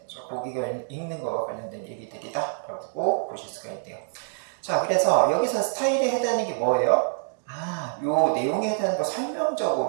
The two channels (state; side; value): silent; left; digital silence